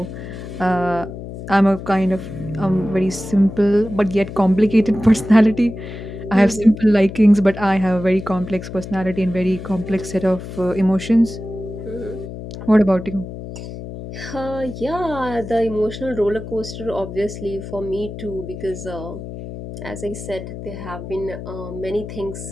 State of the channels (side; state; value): left; noise; hum, 10 dB below the sound